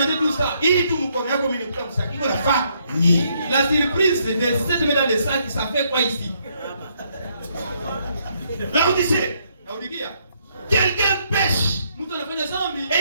tout ça. La surprise de cette main dans les sacs, ça fait quoi ici? Là on disait, quelqu'un pêche.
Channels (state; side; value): inverted; both; correlation -0.72